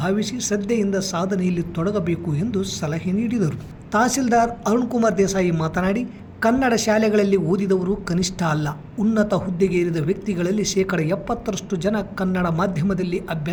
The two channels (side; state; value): both; identical; correlation 1.00